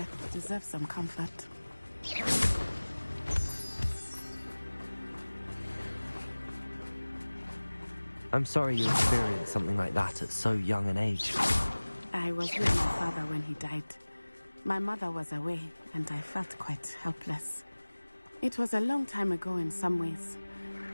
deserve some comfort. I'm sorry you experienced something like that at so young an age. I was with my father when he died. My mother was away, and I felt quite helpless. It was a long time ago in some ways,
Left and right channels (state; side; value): inverted; both; correlation -1.00